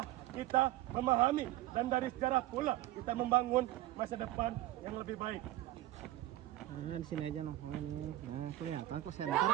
kita memahami, dan dari sejarah pula kita membangun masa depan yang lebih baik. Nah, di sini aja nongkrong nih. Nah, kelihatan kok center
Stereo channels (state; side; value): quieter; left; 15.6 dB